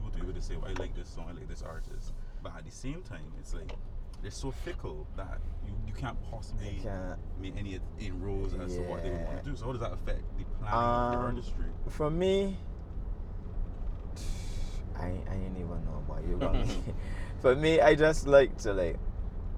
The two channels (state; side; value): identical; both; correlation 1.00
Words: to be able to say, well, I like this song, I like this artist. But at the same time, it's like, they're so fickle that you can't possibly make any inroads as to what they want to do. So how does that affect the planning of the artistry? For me, I ain't even know about you got me. For me, I just like to